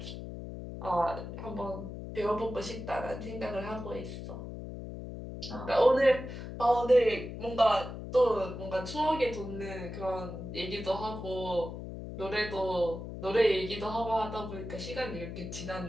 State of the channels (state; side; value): noise; left; hum, 9 dB below the sound